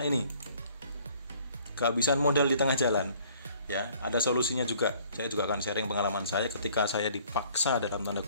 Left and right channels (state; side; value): inverted; both; correlation -0.57